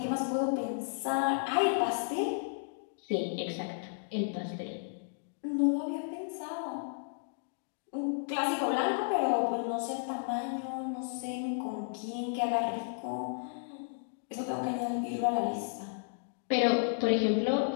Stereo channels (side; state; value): right; silent; digital silence